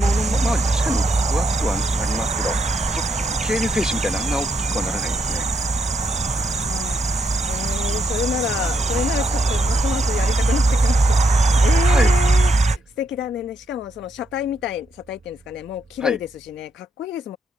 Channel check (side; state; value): both; normal; correlation 0.76